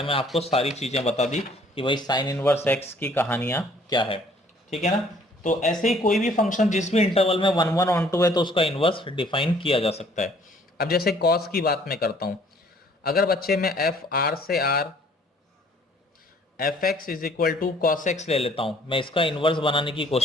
में आपको सारी चीजें बता दी कि भाई साइन इनवर्स एक्स की कहानियां क्या है, ठीक है ना। तो ऐसे ही कोई भी फंक्शन जिस भी इंटरवल में 1/1 है तो उसका इनवर्स डिफाइन किया जा सकता है। अब जैसे कॉस की बात मैं करता हूं, अगर बच्चे में एफ आर से R F X is equal to cos X ले लेता हूं, मैं इसका इनवर्स बनाने की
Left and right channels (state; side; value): normal; both; correlation 0.58